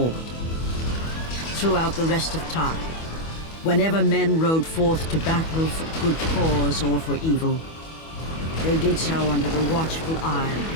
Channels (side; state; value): right; late; 25 ms